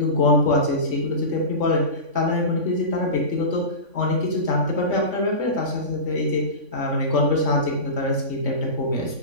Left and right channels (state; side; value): late; left; 3.5 ms